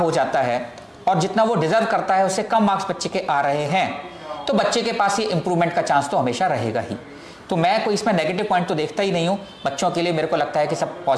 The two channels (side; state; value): both; identical; correlation 1.00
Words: हो जाता है और जितना वो डिजर्व करता है उससे कम मार्क्स बच्चे के आ रहे हैं, तो बच्चे के पास ये इंप्रूवमेंट का चांस तो हमेशा रहेगा ही। तो मैं कोई इसमें नेगेटिव पॉइंट तो देखता ही नहीं हूँ। बच्चों के लिए मेरे को लगता है कि सब